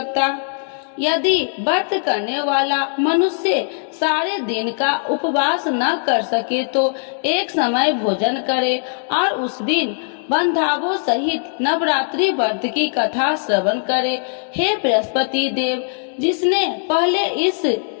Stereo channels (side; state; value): right; silent; digital silence